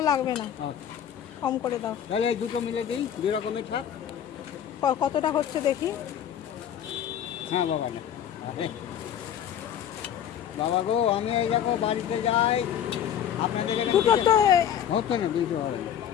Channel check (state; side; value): quieter; right; 9.7 dB